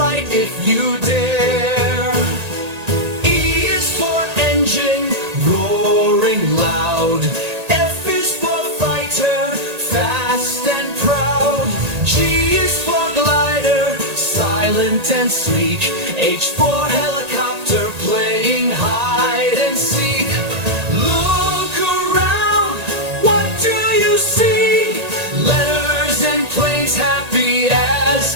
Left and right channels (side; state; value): left; late; 1.8 ms